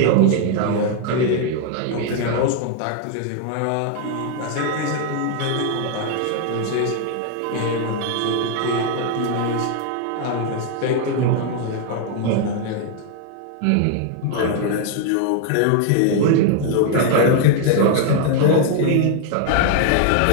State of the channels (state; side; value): different; both; correlation 0.00